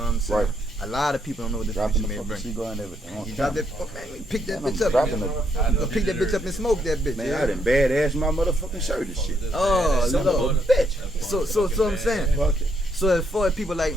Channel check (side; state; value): both; normal; correlation 0.74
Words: what I'm saying? Right. A lot of people don't know what the Dropping future the may fucking bring. cigar and everything. You drop that, oh man, pick that bitch up. dropping Man. it. You gonna pick that bitch up and smoke that bitch. Man, yeah? I done badass my motherfucking shirt and shit. Oh, Son Lord. of a bitch. So I'm saying. Fuck it. So as far as people like,